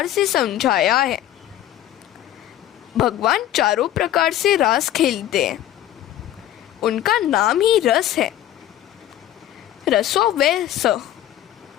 से समझाया है। भगवान चारों प्रकार से रास खेलते हैं। उनका नाम ही रस है। रसो वै स।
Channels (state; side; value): quieter; right; 12.6 dB